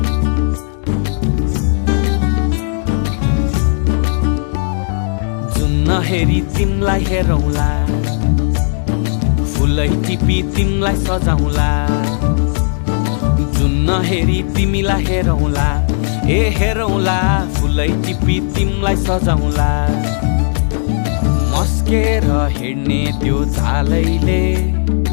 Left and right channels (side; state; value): right; silent; digital silence